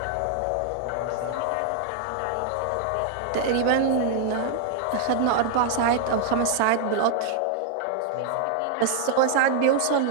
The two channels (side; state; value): both; different; correlation 0.00